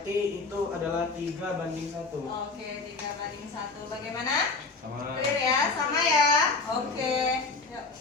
itu adalah 3:1. Oke, 3:1. Bagaimana? Sama. Clear ya? Sama ya? Oke. Yuk,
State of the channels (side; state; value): right; quieter; 4.1 dB